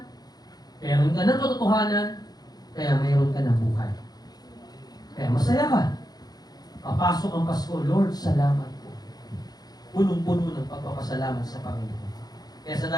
meron ka ng katotohanan, kaya mayroon ka ng buhay. Kaya masaya ka. Papasok ang Pasko, Lord, salamat. punong-puno ng pagpapasalamat sa Panginoon. Kaya sa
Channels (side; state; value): right; late; 0.19 ms